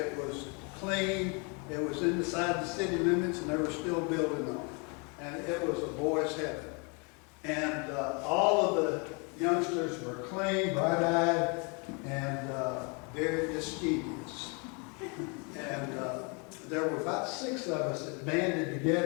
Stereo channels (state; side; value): quieter; right; 33.3 dB